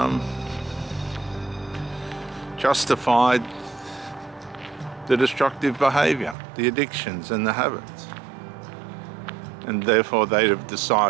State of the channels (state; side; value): drops out; left; at 6.4 s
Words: justified the destructive behavior, the addictions and the habits. And therefore they have